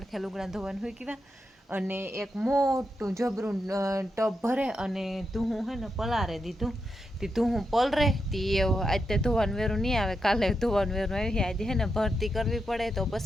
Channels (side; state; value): both; normal; correlation 0.85